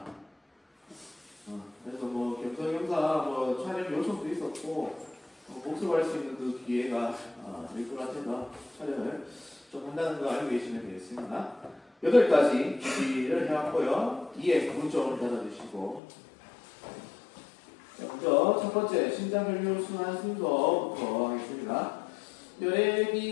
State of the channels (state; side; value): drops out; right; at 16.0 s